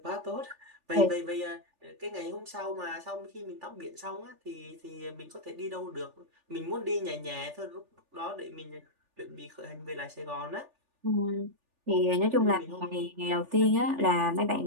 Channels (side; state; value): left; late; 3.4 ms